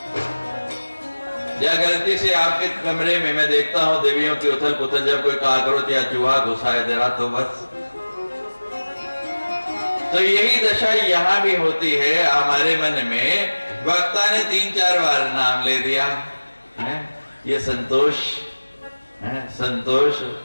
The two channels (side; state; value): both; inverted; correlation -1.00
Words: या गलती से आपके कमरे में मैं देखता हूं देवियों की उथल पुथल, जब कोई काकरोच या चूहा घुसाए दे रहा तो बस। तो यही दशा यहां भी होती है हमारे मन में। वक्ता ने 3-4 बार नाम ले दिया है, ये संतोष है, संतोष,